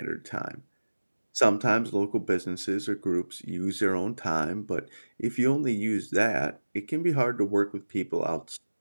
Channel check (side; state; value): both; inverted; correlation -1.00